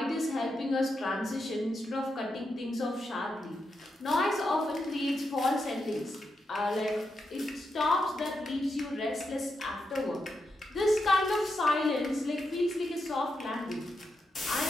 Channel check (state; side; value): normal; both; correlation 0.85